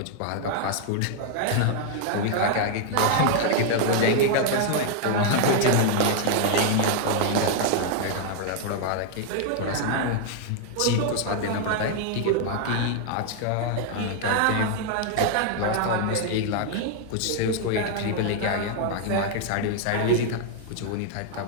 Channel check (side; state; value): both; different; correlation 0.00